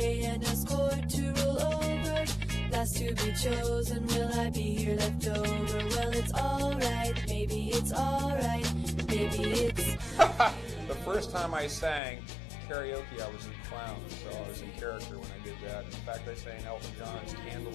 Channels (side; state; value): right; drops out; at 12.0 s